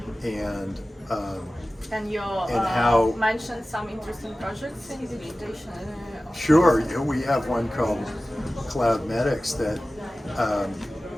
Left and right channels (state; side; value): normal; both; correlation 0.96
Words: and you how mentioned some interesting projects in digitization. Sure, we have one called Cloud Medics that